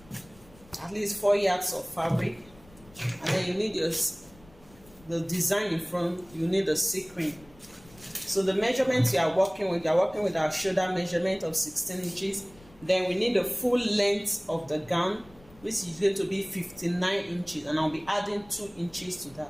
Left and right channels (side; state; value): left; noise; rumble, 25 dB below the sound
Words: at least 4 yards of fabric, and then you need the design in front. You need a sequin. So the measurements you are working with our shoulder measurement of 16 inches. Then we need the full length of the gown, which is going to be 59 inches, and I'll be adding 2 inches to